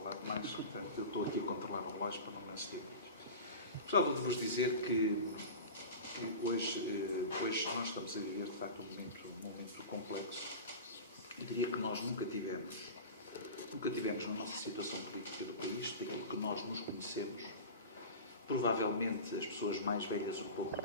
demais, portanto, eu estou aqui a controlar o relógio para não me exceder muito. Gostava de vos dizer que hoje nós estamos a viver, de facto, um momento complexo. Eu diria que nós nunca tivemos na nossa situação política do país, daquilo que nós nos conhecemos. Provavelmente as pessoas mais velhas um pouco do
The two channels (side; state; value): both; inverted; correlation -0.30